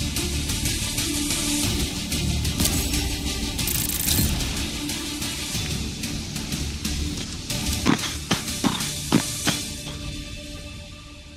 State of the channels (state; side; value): identical; both; correlation 1.00